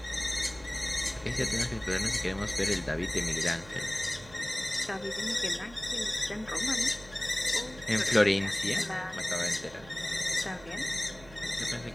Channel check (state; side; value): noise; right; hum, 21 dB below the sound